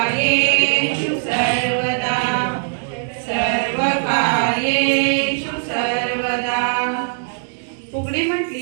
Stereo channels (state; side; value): silent; left; digital silence